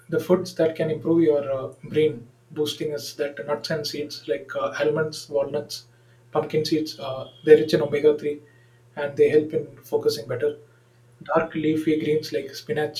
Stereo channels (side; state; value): both; identical; correlation 1.00